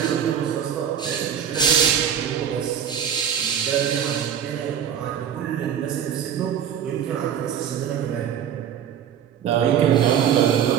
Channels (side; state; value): left; quieter; 8.8 dB